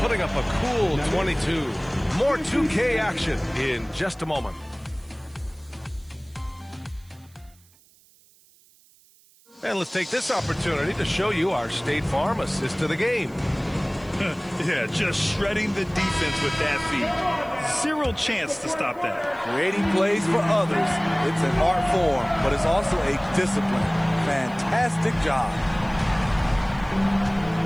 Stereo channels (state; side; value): noise; right; hiss, 29 dB below the sound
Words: putting up a cool 22. More 2K action in just a moment. And let's take this opportunity to show you our State Farm assist to the game. Yeah, just shredding the defense with that feed. Zero chance to stop that. Creating plays for others. It's an art form, but it's also a discipline. Fantastic job.